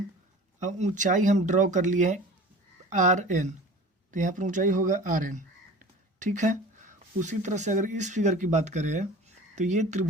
अब ऊंचाई हम ड्रॉ कर लिए हैं RN, तो यहाँ पर ऊंचाई होगा RN, ठीक है। उसी तरह से अगर इस फिगर की बात करें तो ये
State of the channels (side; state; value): both; normal; correlation 0.41